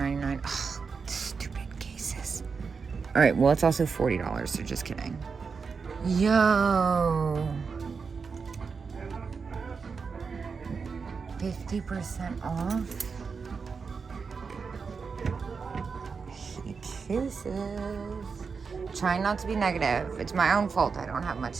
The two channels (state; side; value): quieter; left; 5.3 dB